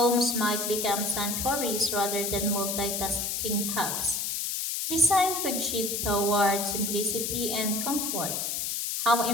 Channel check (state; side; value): noise; left; hiss, 1 dB below the sound